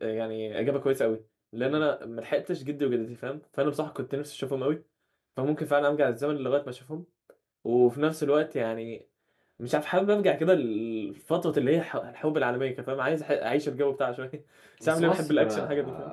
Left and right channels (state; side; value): identical; both; correlation 1.00